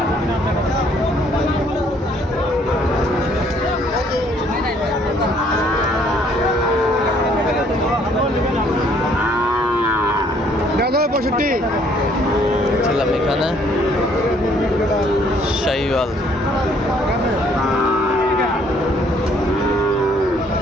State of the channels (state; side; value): normal; both; correlation 0.63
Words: ছিলাম এখানে শাহিওয়াল